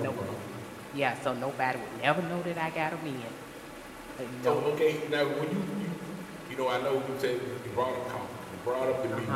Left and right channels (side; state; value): both; identical; correlation 1.00